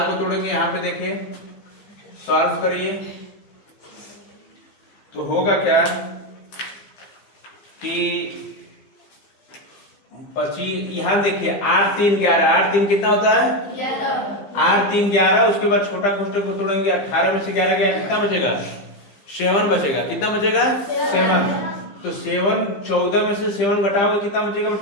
को तोड़ेंगे। यहाँ पे देखिए सॉल्व करिए तो होगा क्या कि 25, यहाँ देखिए 8 3 11, 8 3 कितना होता है 8 3 11। उसके बाद छोटा कोष्टक को तोड़ेंगे, 18 में से 11 गया कितना बचेगा 7 बचेगा। कितना बचेगा 7। तो 7 14 में से 7 घटाओगे कितना बचेगा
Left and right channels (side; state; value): right; late; 15 ms